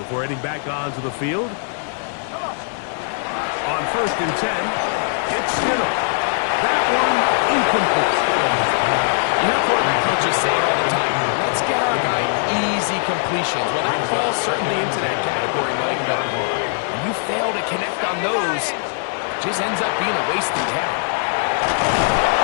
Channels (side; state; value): right; silent; 55 dB below the other